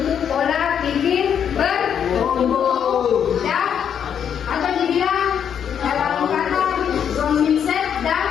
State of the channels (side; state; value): right; quieter; 8.3 dB